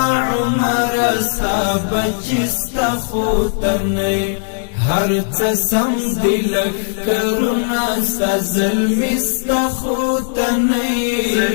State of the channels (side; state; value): right; silent; digital silence